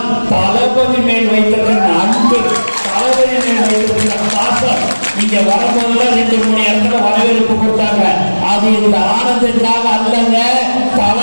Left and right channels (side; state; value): both; inverted; correlation -1.00